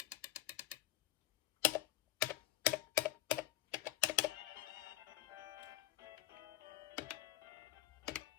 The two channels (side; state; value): right; quieter; 13.9 dB